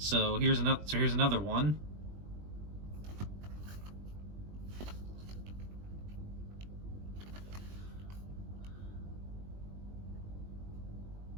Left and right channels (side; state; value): left; late; 20 ms